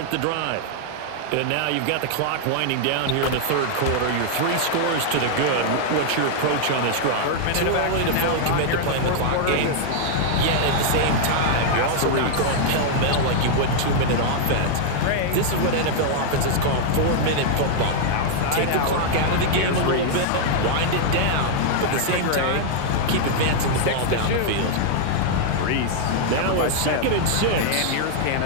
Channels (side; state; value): both; different; correlation -0.01